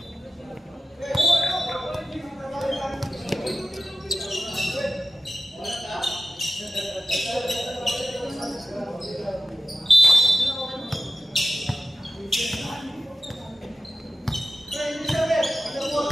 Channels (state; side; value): normal; both; correlation 0.93